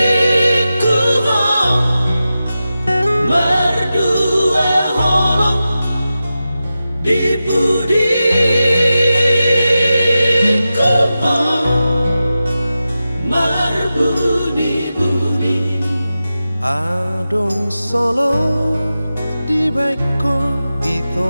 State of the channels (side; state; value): both; inverted; correlation -0.93